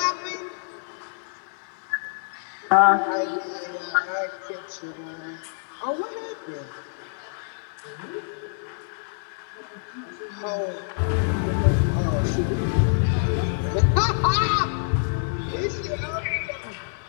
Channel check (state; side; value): silent; right; digital silence